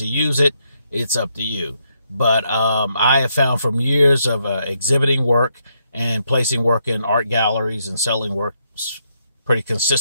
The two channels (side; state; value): both; inverted; correlation -0.77